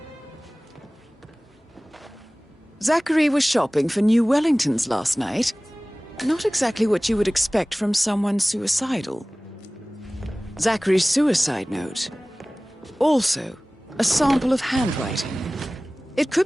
Zachary was shopping for new Wellingtons last night. Not exactly what you would expect from someone suicidal. Zachary's suicide note. Also, a sample of handwriting. It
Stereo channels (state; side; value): normal; both; correlation 0.98